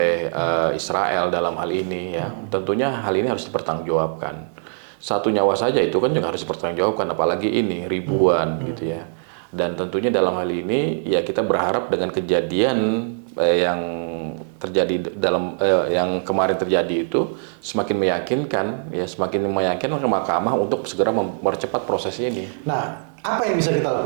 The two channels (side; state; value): left; silent; digital silence